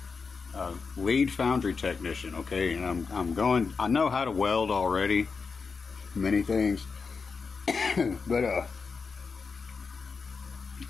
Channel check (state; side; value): quieter; right; 5.0 dB